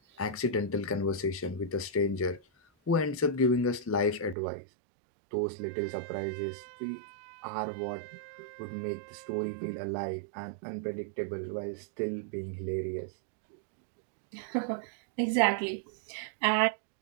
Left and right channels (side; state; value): left; drops out; at 4.4 s